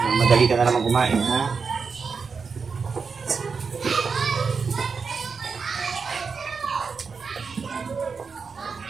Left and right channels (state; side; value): quieter; left; 5.3 dB